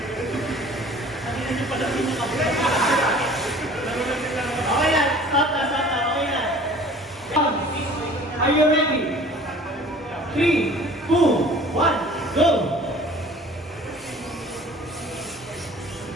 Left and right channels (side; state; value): both; normal; correlation 0.48